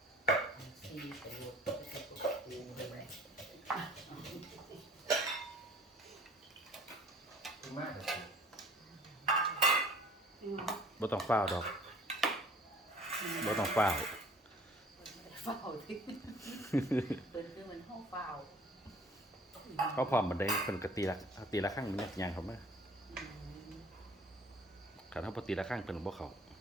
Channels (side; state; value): both; normal; correlation 0.51